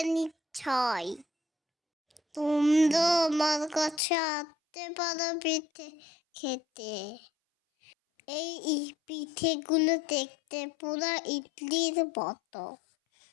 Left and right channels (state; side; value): drops out; right; at 4.0 s